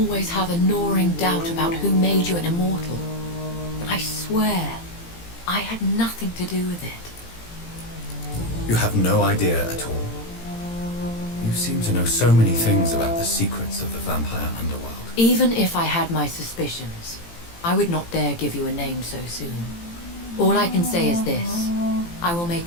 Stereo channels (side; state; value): right; late; 18 ms